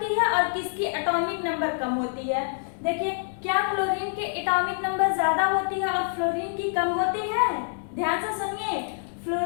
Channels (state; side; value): silent; right; digital silence